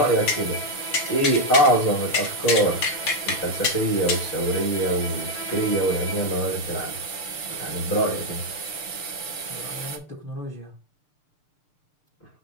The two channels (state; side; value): late; right; 6.7 ms